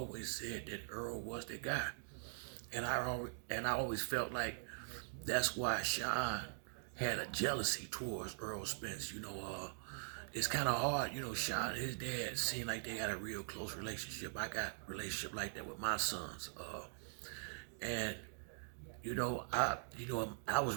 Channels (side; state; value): left; silent; digital silence